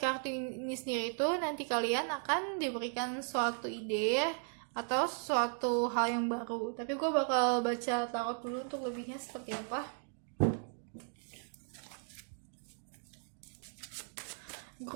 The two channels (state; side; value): silent; left; 53 dB below the other